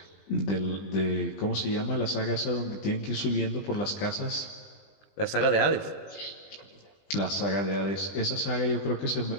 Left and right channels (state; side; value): late; right; 20 ms